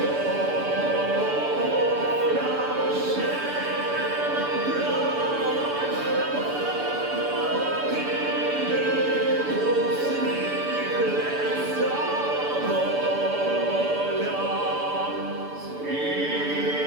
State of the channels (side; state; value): left; late; 6.9 ms